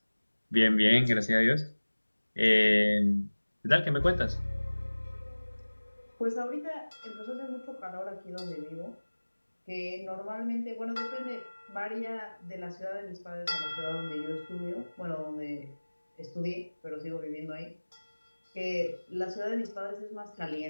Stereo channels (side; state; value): both; inverted; correlation -1.00